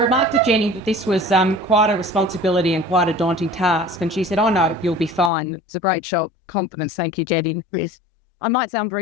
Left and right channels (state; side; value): drops out; right; at 5.3 s